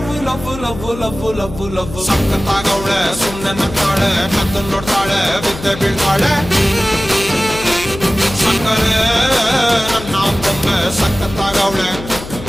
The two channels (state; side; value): noise; left; hum, 12 dB below the sound